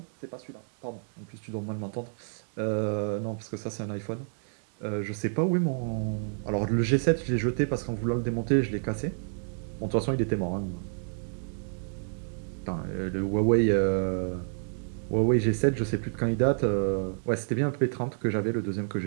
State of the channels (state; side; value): silent; left; digital silence